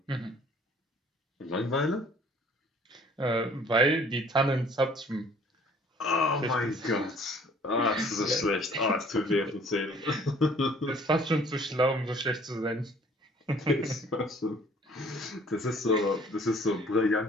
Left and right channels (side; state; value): both; normal; correlation 0.55